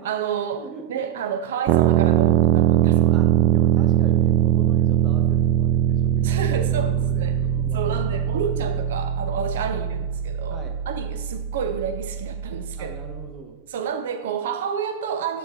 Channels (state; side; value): quieter; left; 9.9 dB